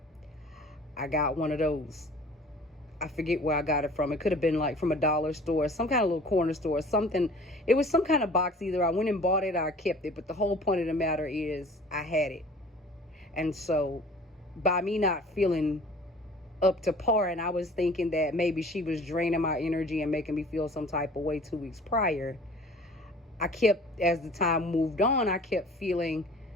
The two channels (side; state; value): both; normal; correlation 0.47